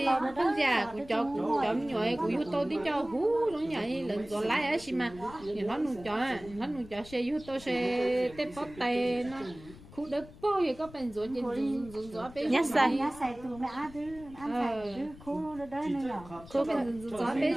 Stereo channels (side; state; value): left; noise; rumble, 19 dB below the sound